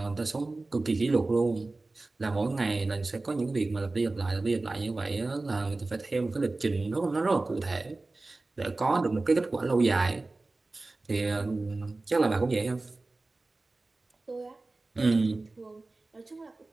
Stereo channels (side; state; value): left; quieter; 3.2 dB